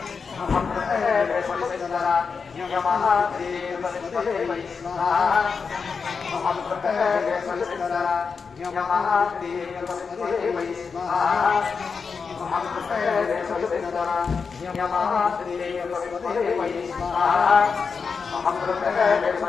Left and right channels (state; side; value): quieter; right; 5.4 dB